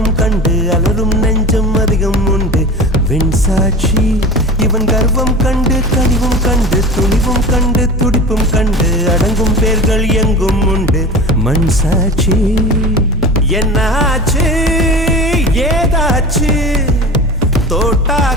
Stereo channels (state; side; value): normal; both; correlation 0.35